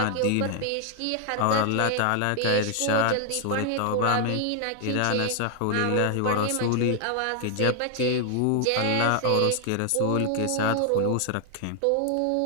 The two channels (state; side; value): different; both; correlation 0.00